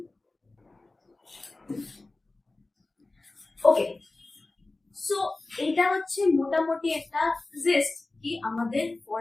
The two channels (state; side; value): quieter; right; 3.1 dB